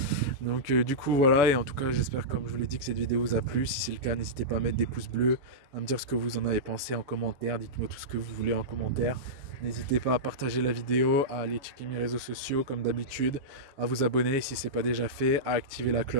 Donc du coup voilà, et en tout cas j'espère, comme je vous l'ai dit, que cette vidéo vous a plu. Si c'est le cas, n'hésitez pas à mettre des pouces bleus, à me dire ce que vous en avez pensé en commentaire, dites-moi tout ce que vous voulez en commentaire. N'hésitez pas à partager la vidéo, à aller checker mes réseaux sociaux comme d'habitude, à vous abonner si ce n'est pas déjà fait, à activer la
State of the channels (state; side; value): late; left; 6.9 ms